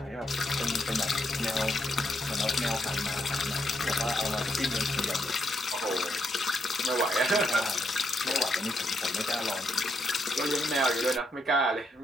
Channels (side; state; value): both; normal; correlation 0.78